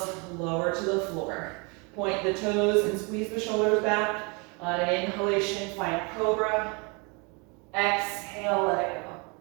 lower to the floor. Point the toes and squeeze the shoulders back. On an inhalation, find cobra. Exhale, let it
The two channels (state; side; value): quieter; left; 31.3 dB